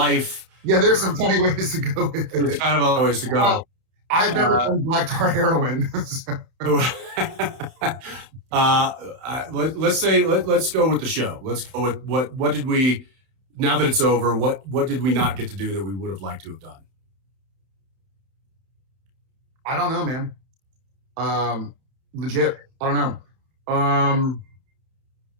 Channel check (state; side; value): late; left; 31 ms